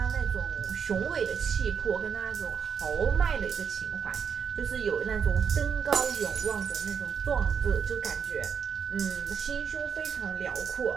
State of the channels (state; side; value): quieter; left; 6.9 dB